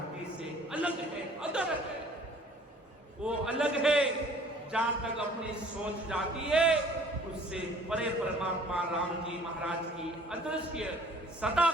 से अलग है, अदर है। वो अलग है, जहां तक अपनी सोच जाती है उससे परे परमात्मा राम जी महाराज की अदृश्य सदा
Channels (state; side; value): normal; both; correlation 0.53